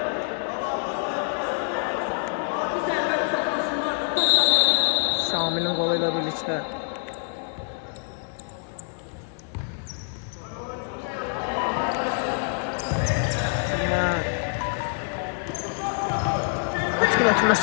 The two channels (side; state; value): right; silent; 56 dB below the other